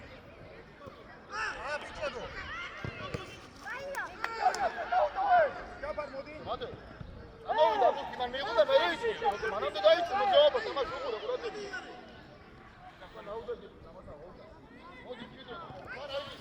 Hadi. Ama o da bu kiman meydan da veriyor işte. Bana da dayı çıkıyor. Cevap ama şu burada burada. Kafa nauda gibi. O gidiyor. Var ay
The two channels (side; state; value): both; identical; correlation 1.00